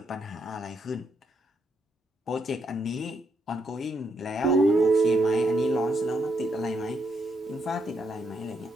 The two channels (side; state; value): both; normal; correlation 0.77